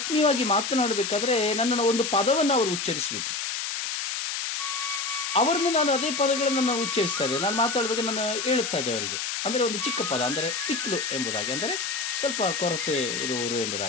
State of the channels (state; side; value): noise; left; hiss, 3 dB below the sound